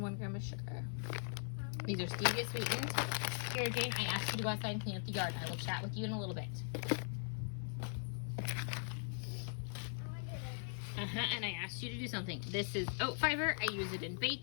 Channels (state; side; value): silent; right; 51 dB below the other